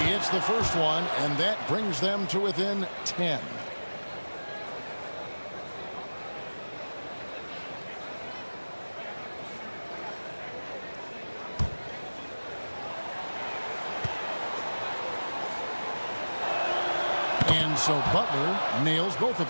hits the first one, and that brings them to within 10. And so Butler nails both of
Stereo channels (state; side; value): inverted; both; correlation -1.00